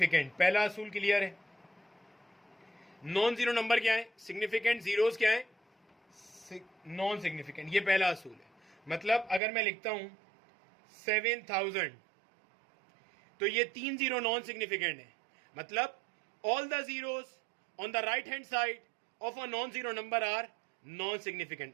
पहला असूल क्लियर है। नॉन जीरो नंबर क्या है? सिग्निफिकेंट। जीरोज क्या है? Non significant. ये पहला असूल है। मतलब अगर मैं लिखता हूं 7000 तो ये 3 जीरो नॉन सिग्निफिकेंट है। मतलब all the zeros on the right hand side of a non zero number are non significant.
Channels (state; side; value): drops out; left; at 9.4 s